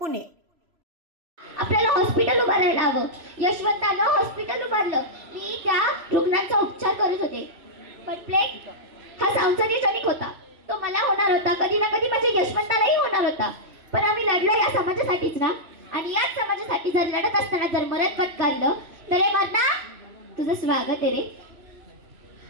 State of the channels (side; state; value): left; late; 3.0 ms